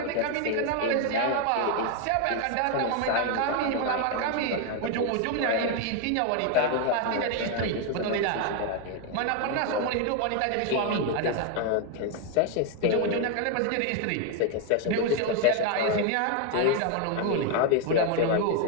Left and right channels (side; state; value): both; different; correlation 0.01